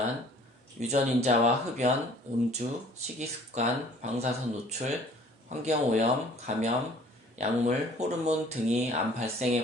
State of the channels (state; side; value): normal; both; correlation 0.53